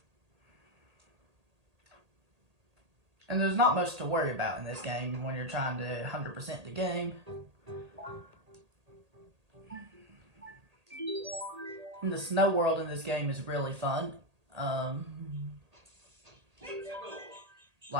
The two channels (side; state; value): left; late; 1.8 ms